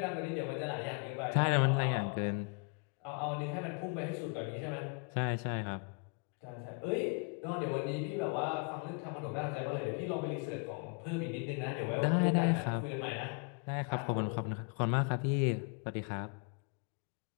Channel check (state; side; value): quieter; right; 35.0 dB